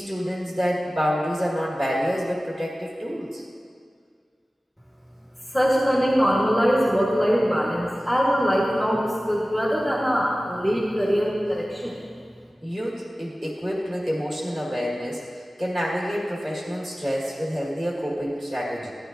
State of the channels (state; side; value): normal; both; correlation 0.96